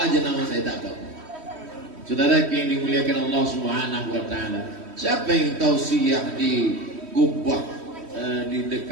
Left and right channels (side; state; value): left; late; 3.1 ms